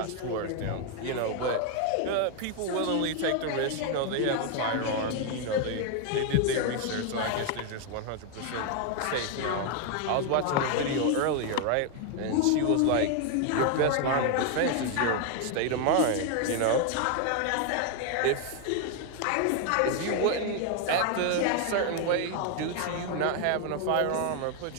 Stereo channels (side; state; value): both; different; correlation 0.00